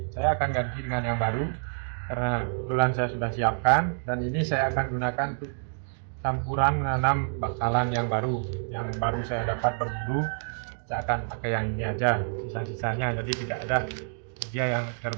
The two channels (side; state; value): left; silent; digital silence